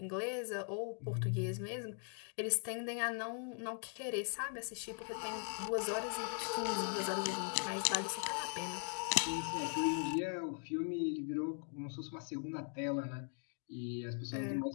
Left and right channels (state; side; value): silent; right; 51 dB below the other